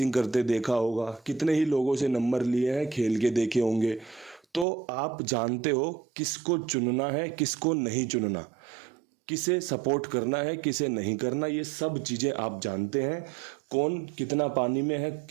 करते देखा होगा, कितने ही लोगों से नंबर लिए हैं, खेल के देखे होंगे। तो आप जानते हो किसको चुनना है, किसको नहीं चुनना, किसे सपोर्ट करना है, किसे नहीं करना। ये सब चीज़ें आप जानते हैं। कौन कितना पानी में है,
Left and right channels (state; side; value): drops out; left; at 4.7 s